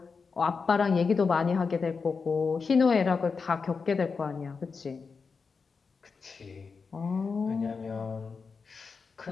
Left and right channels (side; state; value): right; quieter; 5.0 dB